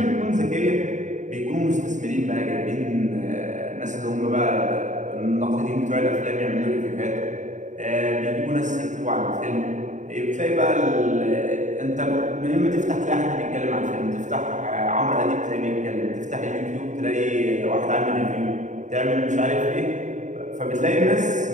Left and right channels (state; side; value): late; left; 0.35 ms